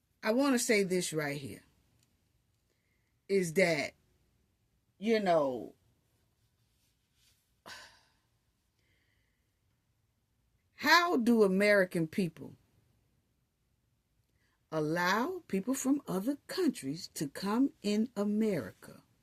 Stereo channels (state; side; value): identical; both; correlation 1.00